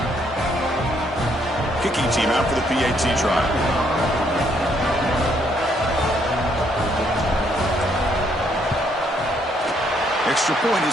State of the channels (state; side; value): normal; both; correlation 0.70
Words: Kicking team out for the PAT try. Extra point